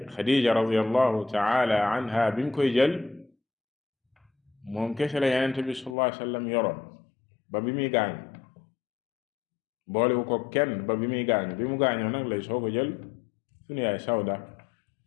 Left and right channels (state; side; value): drops out; right; at 6.0 s